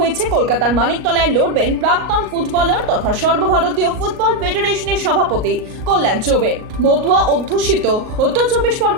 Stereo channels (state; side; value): late; left; 38 ms